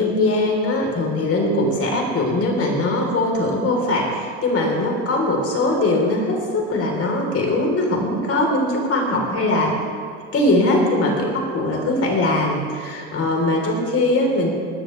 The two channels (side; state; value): both; normal; correlation 0.19